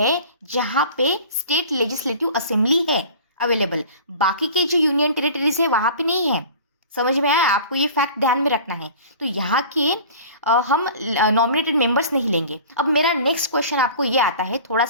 जहाँ पे स्टेट लेजिस्लेटिव असेंबली है अवेलेबल। बाकी के जो यूनियन टेरिटरीज है वहाँ पे नहीं है। समझ में आया? आपको ये फैक्ट ध्यान में रखना है। तो यहाँ के हम नॉमिनेटेड मेंबर्स नहीं लेंगे। अब मेरा नेक्स्ट क्वेश्चन आपको ये आता है, थोड़ा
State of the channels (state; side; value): inverted; both; correlation -0.41